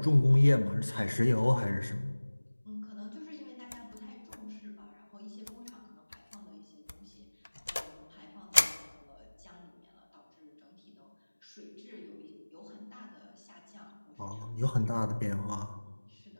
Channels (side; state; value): both; inverted; correlation -1.00